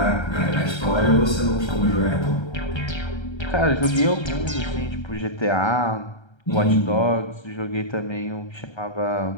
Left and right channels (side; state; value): right; late; 1.3 ms